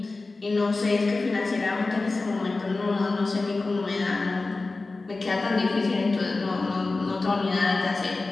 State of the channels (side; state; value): right; quieter; 3.5 dB